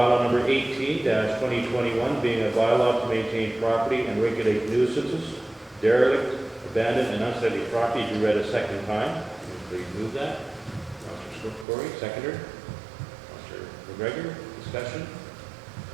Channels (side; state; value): left; drops out; at 11.7 s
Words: number 18-2021, being a bylaw to maintain property and regulate nuisances, derelict, abandoned, and unsightly property, be read a second time. Please move that. Councilor Corey, seconder. Councilor McGregor, discussion.